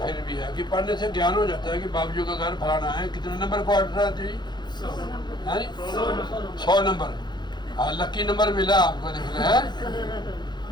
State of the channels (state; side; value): late; right; 0.21 ms